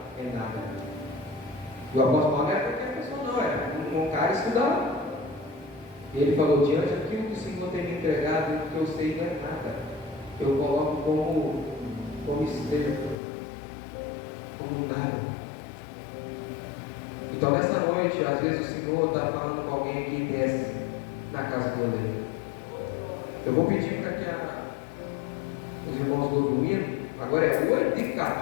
é nada. E o apóstolo Paulo não é qualquer pessoa, não, é um cara estudado. Ele falou: diante daquilo que o Senhor tem me entregado, o que eu sei não é nada. Eu coloco como esterco, como nada. Então nessa noite, às vezes o Senhor está falando com alguém que desce na casa do oleiro. Eu vou pedir para que os irmãos do domingo, agora é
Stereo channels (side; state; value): right; drops out; at 13.2 s